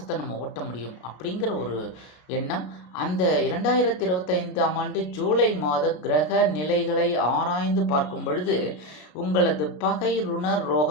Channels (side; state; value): right; late; 33 ms